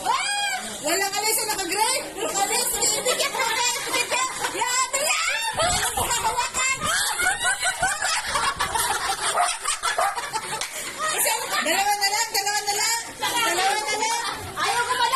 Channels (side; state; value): both; identical; correlation 1.00